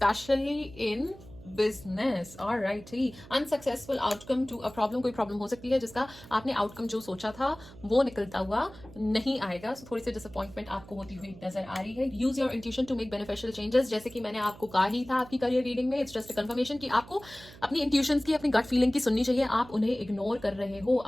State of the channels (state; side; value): noise; right; hum, 19 dB below the sound